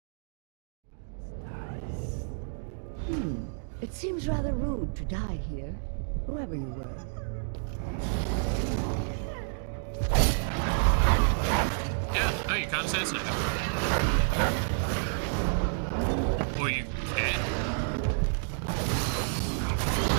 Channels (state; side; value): silent; left; digital silence